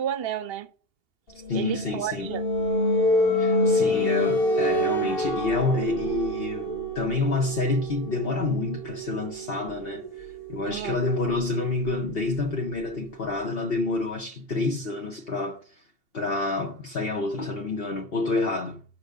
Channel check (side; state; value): right; late; 2.8 ms